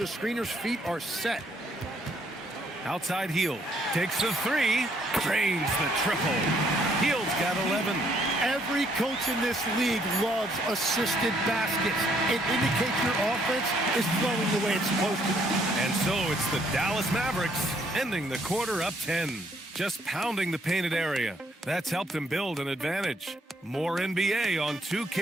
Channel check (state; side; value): normal; both; correlation 0.68